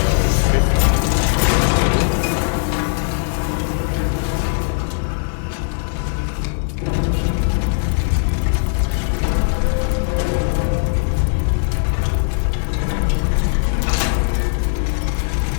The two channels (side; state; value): right; silent; digital silence